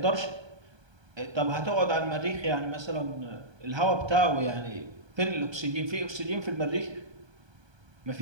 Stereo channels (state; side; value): late; left; 1.2 ms